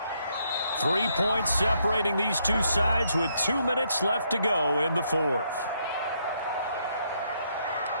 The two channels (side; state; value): both; inverted; correlation -0.75